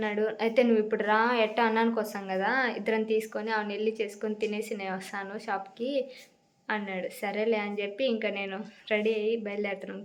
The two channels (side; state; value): both; identical; correlation 1.00